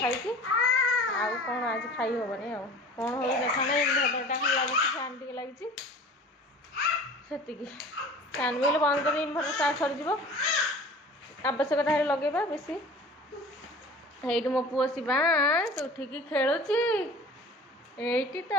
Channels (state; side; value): normal; both; correlation 0.42